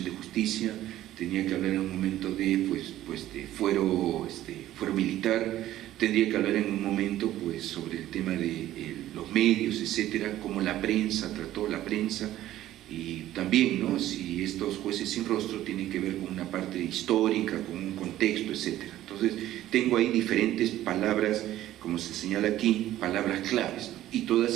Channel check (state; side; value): quieter; left; 13.9 dB